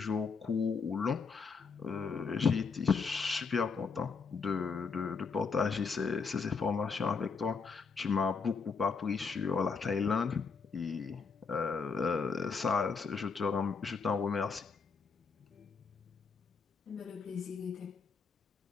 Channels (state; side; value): quieter; right; 5.2 dB